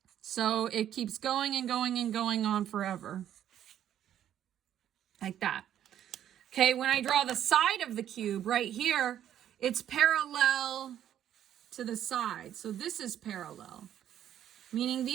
So it keeps going and going and going on forever. Like that. Okay, when I draw the side of the cube right here, it's parallel to the side. So this is parallel, meaning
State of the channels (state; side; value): quieter; left; 10.8 dB